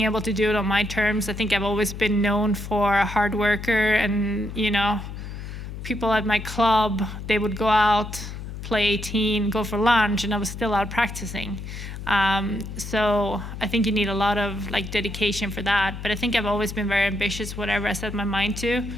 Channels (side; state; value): left; noise; hum, 9 dB below the sound